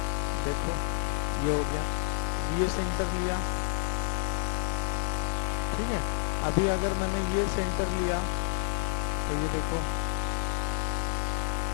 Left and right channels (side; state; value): right; silent; 58 dB below the other